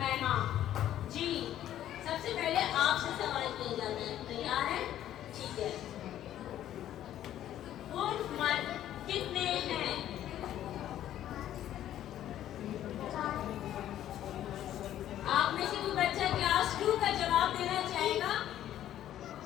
जी, सबसे पहले आपसे सवाल किया जाता है, तैयार है? ठीक है। उर्फ मर्द कितने हैं? आप में से कोई बच्चा क्लास 2 का जवाब देना चाहेगा?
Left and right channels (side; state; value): right; quieter; 12.0 dB